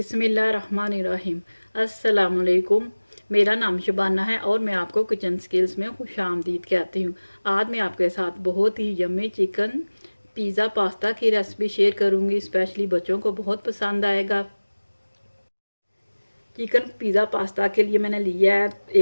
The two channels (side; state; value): both; inverted; correlation -1.00